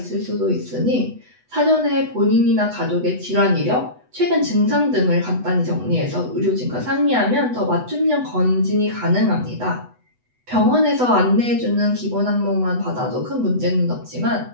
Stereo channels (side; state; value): left; late; 8.1 ms